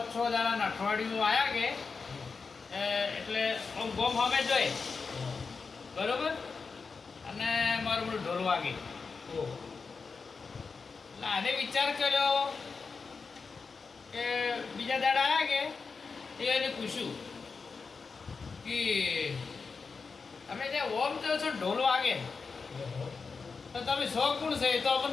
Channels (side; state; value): right; quieter; 4.8 dB